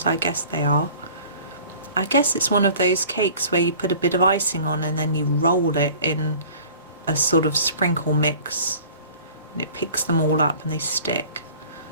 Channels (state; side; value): inverted; both; correlation -0.46